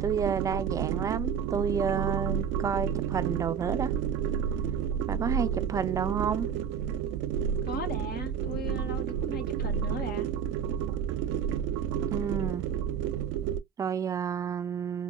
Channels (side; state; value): left; quieter; 7.4 dB